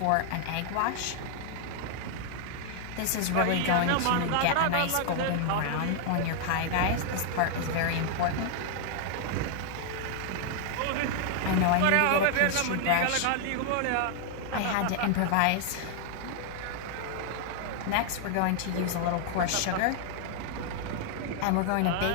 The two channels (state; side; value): different; both; correlation 0.00